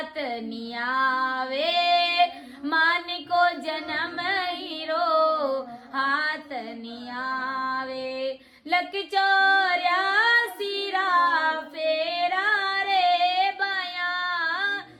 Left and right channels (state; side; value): identical; both; correlation 1.00